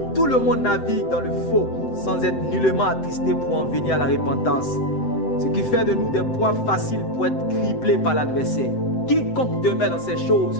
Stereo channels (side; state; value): right; late; 7.8 ms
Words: tout le monde navigue dans le faux sans être nullement attristé pour en venir à la repentance. Ce qui fait de nous des proies faciles pour être criblés par l'adversaire. Quiconque demeure dans ces choses